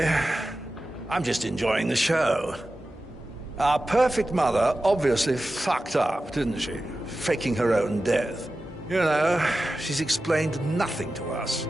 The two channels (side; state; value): both; normal; correlation 0.94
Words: I'm just enjoying the show. Our perfect mother obviously fucked up, didn't she? Faking her own death. You know, she's explained nothing to us.